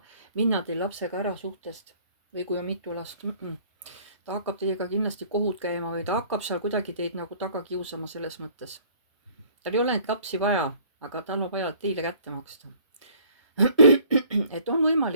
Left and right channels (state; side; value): inverted; both; correlation -0.55